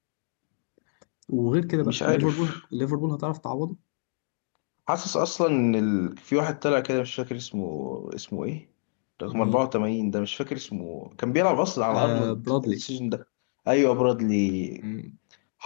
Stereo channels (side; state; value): right; silent; digital silence